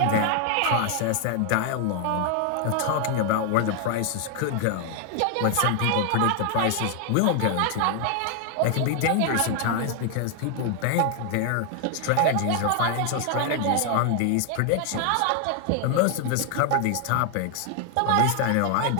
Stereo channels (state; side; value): different; both; correlation 0.00